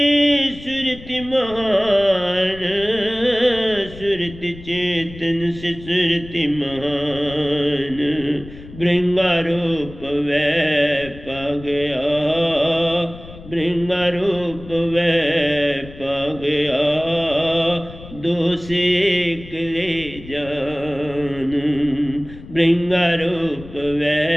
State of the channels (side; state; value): left; noise; rumble, 16 dB below the sound